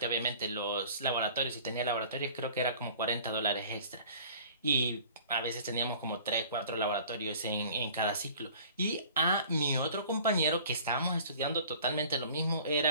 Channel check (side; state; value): both; inverted; correlation -0.48